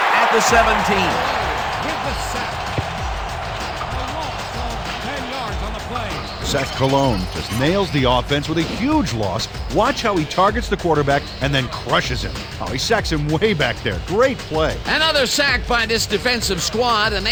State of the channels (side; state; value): both; identical; correlation 1.00